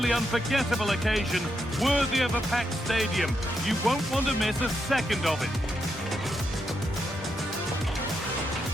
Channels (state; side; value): normal; both; correlation 0.82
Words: unforgettable occasion, worthy of a packed stadium. You won't want to miss a second of it.